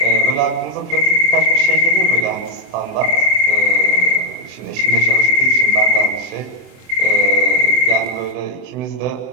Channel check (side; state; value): left; late; 23 ms